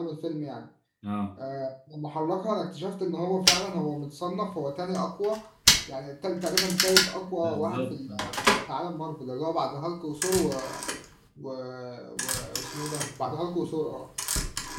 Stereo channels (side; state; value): both; identical; correlation 1.00